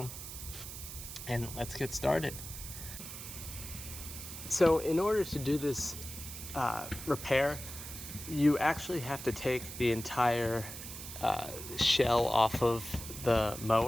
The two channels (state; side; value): noise; right; hiss, 10 dB below the sound